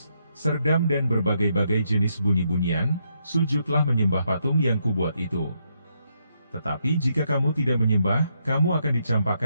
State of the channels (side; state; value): both; inverted; correlation -0.78